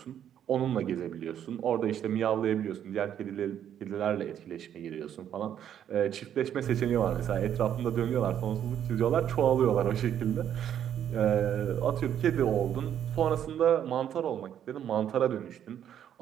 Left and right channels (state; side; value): quieter; left; 9.8 dB